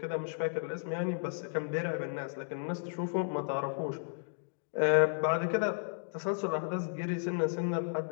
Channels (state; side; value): silent; right; digital silence